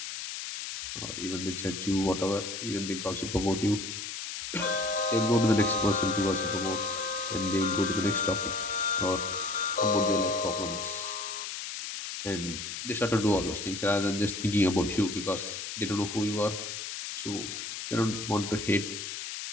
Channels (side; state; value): left; noise; hiss, 6 dB below the sound